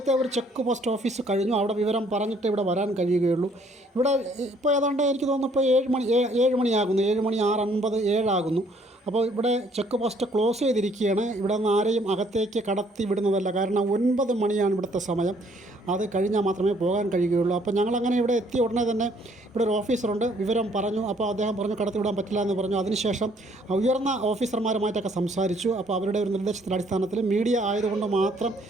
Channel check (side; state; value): both; normal; correlation 0.63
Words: ഒരു ചെക്ക് പോസ്റ്റ് ഓഫീസ് കഴിഞ്ഞു. അവിടെ വിവരം പറഞ്ഞിട്ട് ഇവിടെ വരാൻ കഴിയുകയുള്ളൂ. ഇവിടെ ഇപ്പോൾ ഏതാണ്ട് എനിക്ക് തോന്നുന്നു ഇപ്പോൾ 7 മണിയാകുന്നു. 7 മണി 6:50 7 അപ്പോൾ ഇവിടെ ചെക്ക് പോസ്റ്റ് ക്ലോസ് ചെയ്തിരിക്കുകയാണ്. ഇവിടെ നിന്ന് ആരെയും അകത്തേക്ക് കടത്തി വിടുന്നതല്ല. കാരണം 9 മണിയാണ് ഇവിടുത്തെ സമയം. അത് കഴിഞ്ഞാൽ മാത്രമേ പോകാൻ കഴിയുകയുള്ളൂ. അപ്പോൾ ഞങ്ങളങ്ങനെ ഇവിടെ എത്തിയ ഉടനെ തന്നെ ഇവിടെ ഒരു ഓഫീസറുണ്ട്. വിവരം പറഞ്ഞു. അപ്പോൾ അദ്ദേഹം പറഞ്ഞു കടത്തി വിടാൻ പറ്റില്ല എന്ന് പറഞ്ഞു. അതിനുശേഷം ഉയർന്ന ഓഫീസർമാരുമായിട്ടൊക്കെ സംസാരിച്ചു. അപ്പോൾ അവരുടെ ഒരു നിർദ്ദേശത്തിൻ്റെ അടിസ്ഥാനത്തിൽ മീഡിയ ആയതുകൊണ്ട് മാത്രം